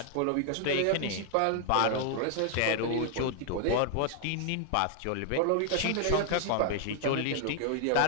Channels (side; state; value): both; different; correlation 0.00